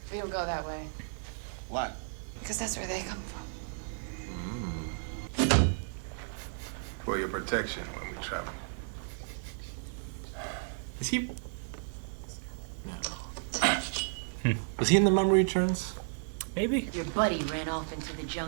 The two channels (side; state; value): left; silent; digital silence